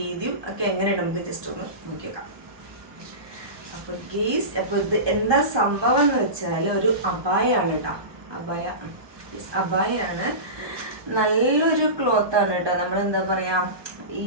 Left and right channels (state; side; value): late; left; 1.2 ms